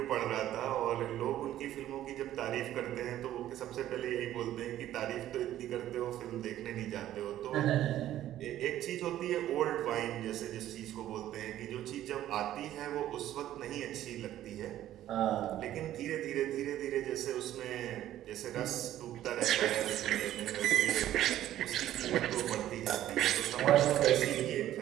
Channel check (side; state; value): left; quieter; 12.8 dB